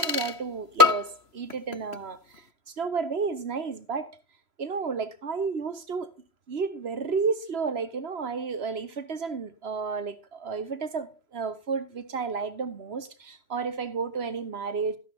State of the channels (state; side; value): late; left; 3.0 ms